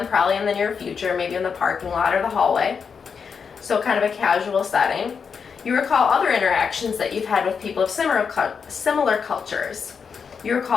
probably in the near future, maybe in the parking lot or the hallway, so kind of a casual setting. You recall other interactions that you've had with people of similar cultures. You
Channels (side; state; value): right; quieter; 6.1 dB